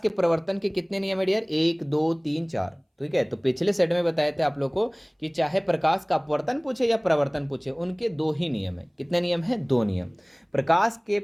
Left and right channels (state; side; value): identical; both; correlation 1.00